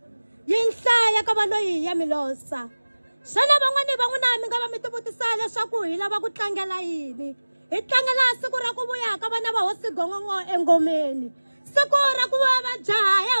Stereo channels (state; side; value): inverted; both; correlation -1.00